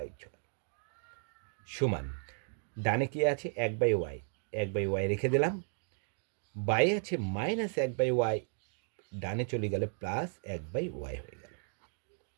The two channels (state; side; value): silent; left; 55 dB below the other